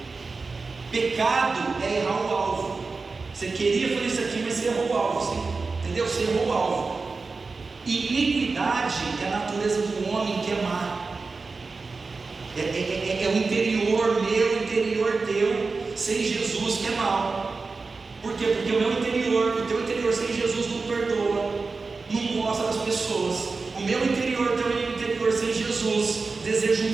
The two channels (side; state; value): left; quieter; 4.1 dB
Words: Pecado é errar o alvo. Você queria fazer isso aqui, mas você errou o alvo, entendeu? Você errou o alvo. Iniquidade é a natureza do homem que é má. É o interior meu, o interior teu, sem Jesus, que é mal. Por quê? Porque o meu interior, o teu interior sem Jesus não perdoa, não gosta das pessoas. O meu interior, o teu interior sem Jesus, deseja